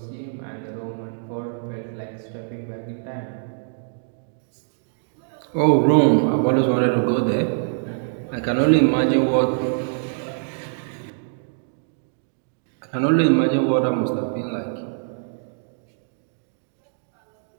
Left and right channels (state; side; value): silent; left; digital silence